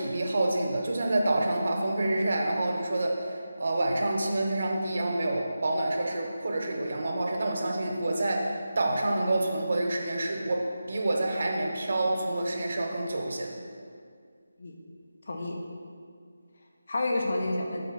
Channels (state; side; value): inverted; both; correlation -0.92